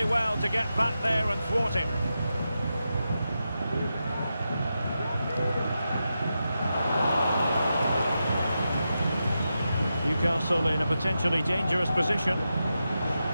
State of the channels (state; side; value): inverted; both; correlation -0.89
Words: well to get back there and thwart him. Newcastle in a potentially dangerous position.